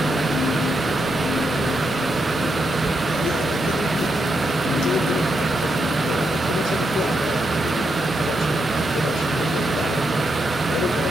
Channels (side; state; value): both; normal; correlation 0.82